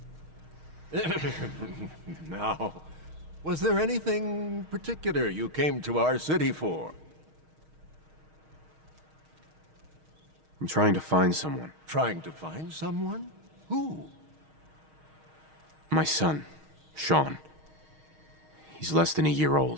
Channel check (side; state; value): left; late; 6.4 ms